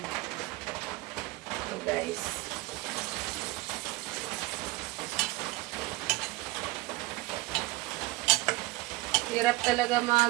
So guys. Hirap talaga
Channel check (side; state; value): left; quieter; 20.9 dB